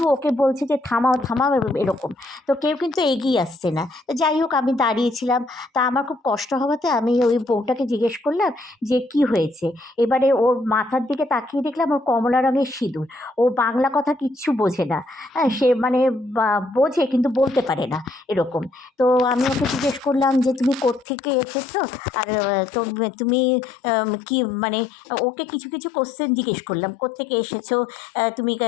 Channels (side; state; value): right; drops out; at 21.1 s